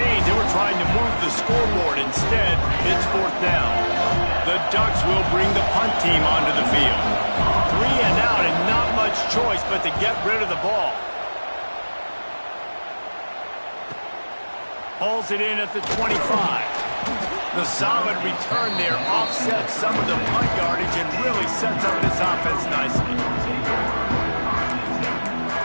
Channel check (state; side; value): inverted; both; correlation -1.00